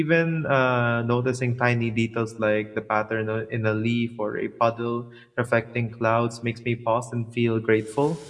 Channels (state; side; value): identical; both; correlation 1.00